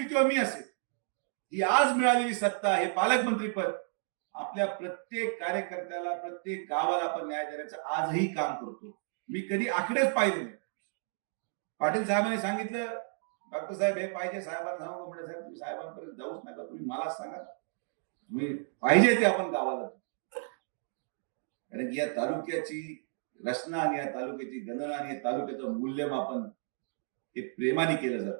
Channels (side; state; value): left; silent; digital silence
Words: किंवा मी असेल, ही आज मिळालेली सत्ता हे पालकमंत्री पद आपल्या प्रत्येक कार्यकर्त्याला, प्रत्येक गावाला आपण न्याय देण्याचं आजही काम करतो. मी कधी आकडेच पाहिले नाही. पाटील साहेबांनी सांगितलं, डॉक्टर साहेब हे पाहिजे, साहेबांना सांगू म्हणजे साहेब तुम्ही साहेबांपर्यंत जाऊच नका, तुम्ही मला सांगा, तुम्ही पाहिजे ते आपण गावाला. कारण या तालुक्याची रचना आणि या तालुक्याची गणना आणि या तालुक्याचं मूल्यमापन हे प्रेमाने केलं